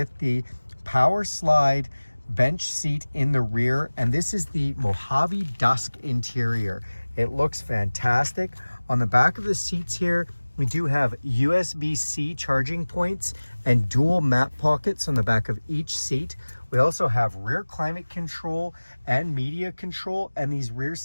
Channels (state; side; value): inverted; both; correlation -1.00